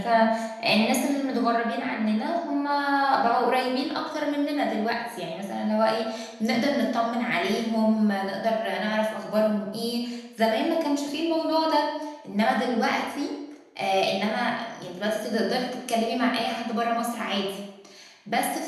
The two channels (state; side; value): identical; both; correlation 1.00